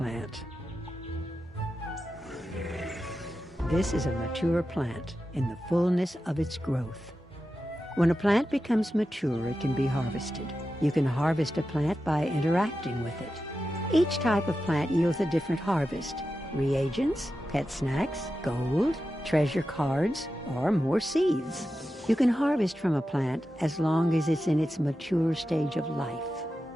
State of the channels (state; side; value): normal; both; correlation 0.91